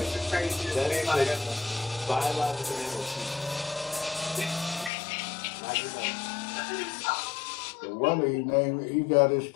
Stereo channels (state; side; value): drops out; right; at 4.9 s